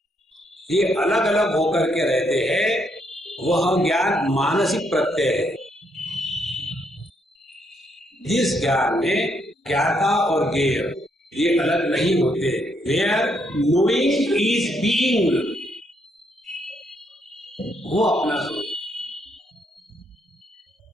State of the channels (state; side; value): normal; both; correlation 0.74